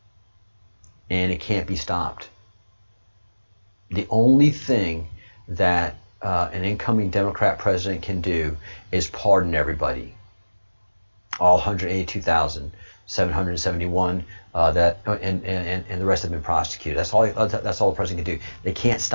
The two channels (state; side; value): inverted; both; correlation -1.00